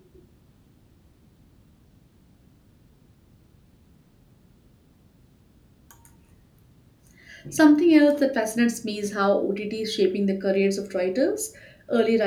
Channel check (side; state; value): both; identical; correlation 1.00